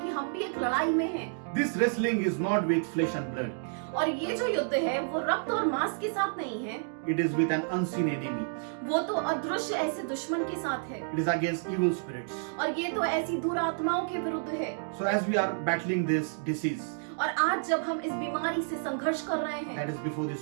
कि हम भी एक लड़ाई में हैं। This wrestling is not with flesh and blood. और ये जो युद्ध है वो रक्त और मांस के साथ नहीं है, It is with an unseen enemy. वो तो अदृश्य ऐसे दुश्मन के साथ है It is against evil spirits. और ये तो ऐसी दुरात्माओं के विरुद्ध है। So as we are battling this disease और आज जब हम इस बीमारी से संघर्ष कर रहे हैं that is before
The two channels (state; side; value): silent; left; digital silence